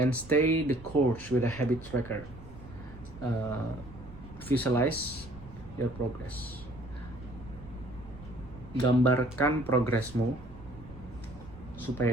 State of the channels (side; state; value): right; noise; rumble, 16 dB below the sound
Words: stay the course with a habit tracker. Visualize your progress. Gambarkan progresmu